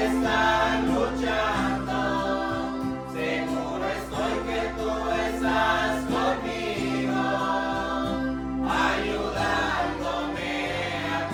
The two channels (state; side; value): identical; both; correlation 1.00